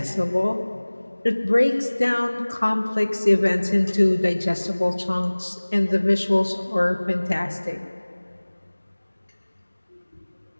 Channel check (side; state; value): both; inverted; correlation -1.00